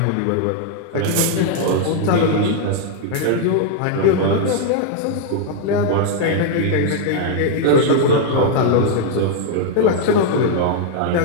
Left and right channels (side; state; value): both; different; correlation 0.00